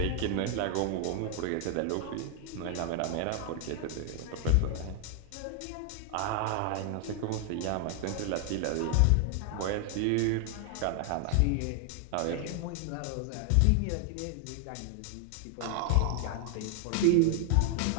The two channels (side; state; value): both; different; correlation 0.00